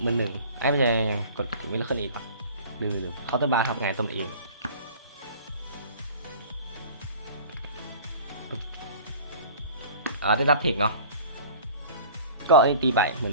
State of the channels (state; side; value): inverted; both; correlation -0.45